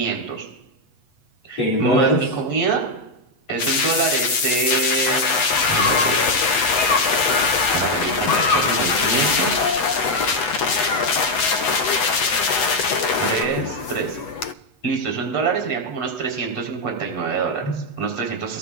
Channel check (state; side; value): late; right; 8.1 ms